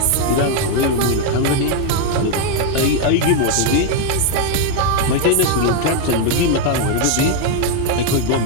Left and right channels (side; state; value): both; different; correlation 0.00